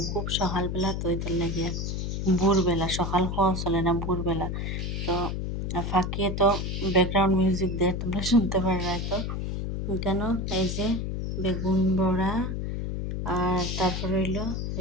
খুব সকালবেলা তো এটার লাগিয়া ভোরবেলা সকাল খাওয়া চলে না ভোরবেলা তো ফাঁকিয়ে তো ব্যাকগ্রাউন্ড মিউজিক দিয়ে তোমরা শুনতে পারবে তো কেন এই যে বেগুন বড়া আর তারপরে হইলো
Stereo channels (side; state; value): left; noise; hum, 2 dB below the sound